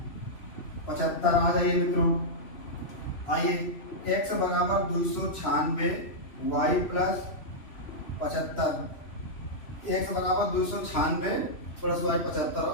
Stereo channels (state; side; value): late; right; 3.1 ms